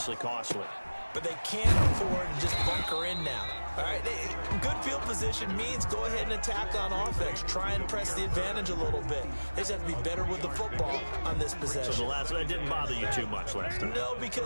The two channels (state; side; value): inverted; both; correlation -1.00